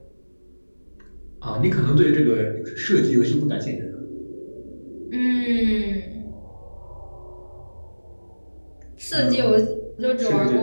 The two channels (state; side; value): inverted; both; correlation -1.00